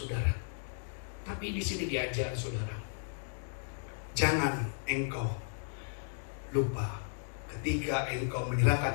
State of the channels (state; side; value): silent; right; digital silence